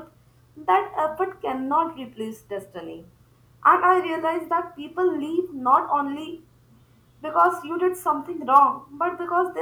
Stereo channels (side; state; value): both; identical; correlation 1.00